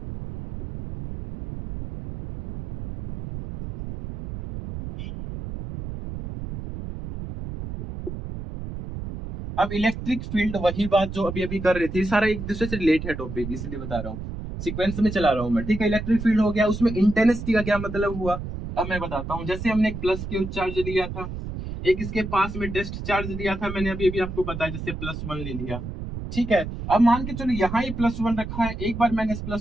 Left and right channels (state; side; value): noise; right; rumble, 8 dB below the sound